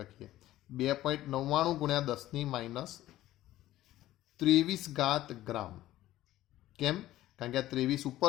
2.99 ગુણ્યા 10⁻23 ગ્રામ. કેમ? કારણ કે આ 23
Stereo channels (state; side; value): quieter; right; 14.8 dB